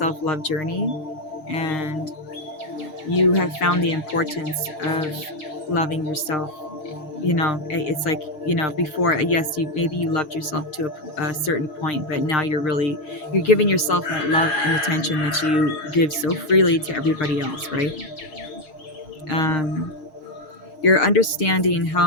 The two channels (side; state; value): right; late; 7.4 ms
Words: journey, and you have found the importance of loving yourself. It's like, before, yes, you maybe you loved yourself to a certain point, but now you're giving yourself that love and attention that you give so freely to everybody else, right? um, you're understanding how